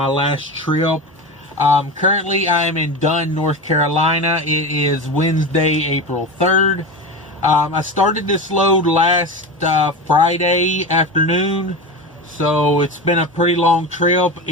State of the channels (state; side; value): normal; both; correlation 0.24